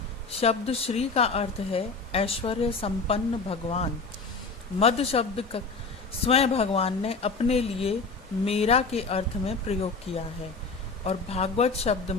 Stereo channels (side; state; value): right; quieter; 4.2 dB